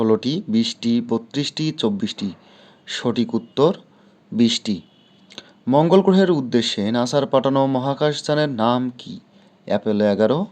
20টি, 32টি, 24টি? সঠিক উত্তর 20টি। মঙ্গল গ্রহের উদ্দেশ্যে নাসার পাঠানো মহাকাশযানের নাম কি? Apollo 11,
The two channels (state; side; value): identical; both; correlation 1.00